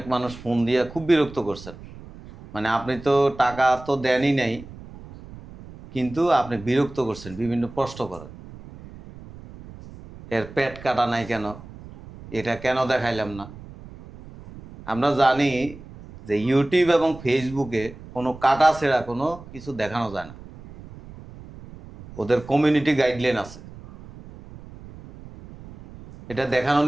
মানুষ ফোন দিয়ে খুব বিরক্ত করছেন। মানে আপনি তো টাকা তো দেনই নাই, কিন্তু আপনি বিরক্ত করছেন, বিভিন্ন প্রশ্ন করেন। এর পেট কাটা নাই কেন, এটা কেন দেখাইলাম না। আমরা জানি যে ইউটিউব এবং ফেসবুকে কোনো কাটা ছেঁড়া কোনো কিছু দেখানো যায় না, ওদের কমিউনিটি গাইডলাইন আছে, এটা দেখানো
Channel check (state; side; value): noise; right; rumble, 17 dB below the sound